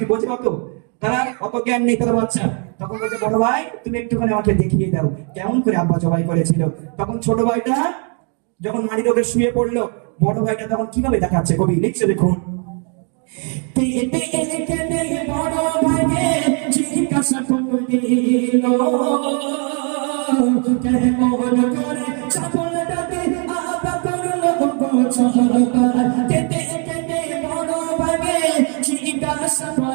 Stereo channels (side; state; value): left; quieter; 39.5 dB